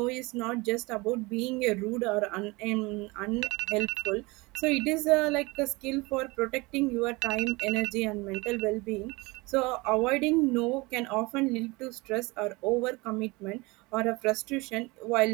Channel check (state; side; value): quieter; left; 24.3 dB